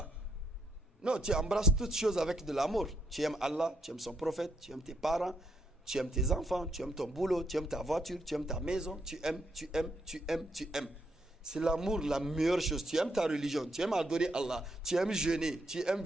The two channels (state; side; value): normal; both; correlation 0.77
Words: Non, tu embrasses toutes choses avec de l'amour. Tu aimes Allah, tu aimes son prophète, tu aimes tes parents, tu aimes tes enfants, tu aimes ton boulot, tu aimes ta voiture, tu aimes ta maison, tu aimes. C'est l'amour la meilleure chose. Tu aimes ta religion, tu aimes adorer Allah, tu aimes jeûner, tu aimes